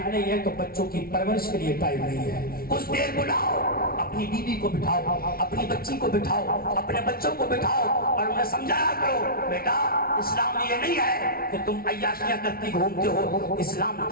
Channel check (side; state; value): right; late; 0.44 ms